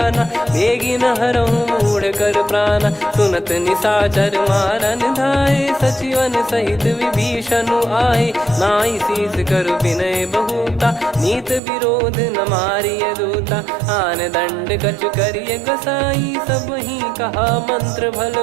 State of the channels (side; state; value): left; drops out; at 11.6 s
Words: बेगी न हरहु मूढ़ कर प्राणा। सुनत निशाचर मारन धाये सचिवन सहित विभीषण आए। नाई शीस कर विनय बहुता नीत विरोध न मारिय दूता। आन दंड कछ करिय गोसाई सब ही कहा मंत्र भल